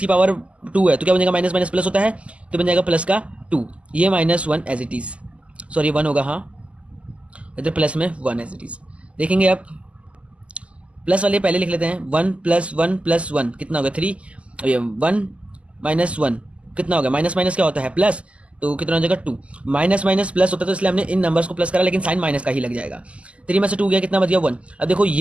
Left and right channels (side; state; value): left; late; 0.059 ms